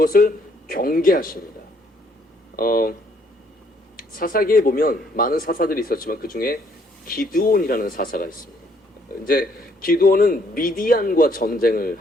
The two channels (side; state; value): both; normal; correlation 0.66